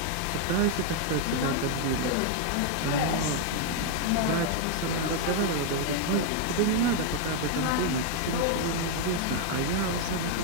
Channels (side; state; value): both; different; correlation 0.00